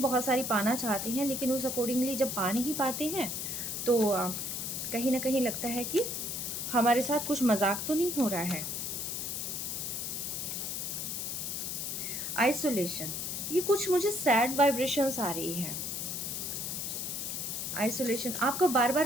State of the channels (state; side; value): noise; left; hiss, 3 dB below the sound